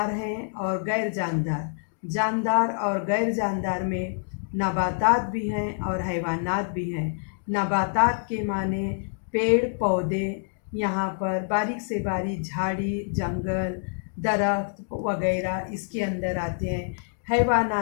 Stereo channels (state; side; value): silent; right; digital silence